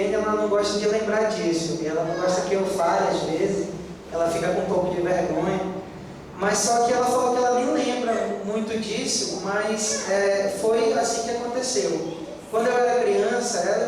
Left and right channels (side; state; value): both; identical; correlation 1.00